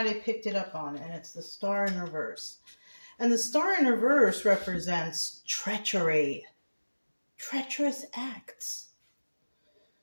I picked it up on, and it's the star in reverse. And the star in reverse represents treachery. Treacherous acts.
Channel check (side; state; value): both; inverted; correlation -1.00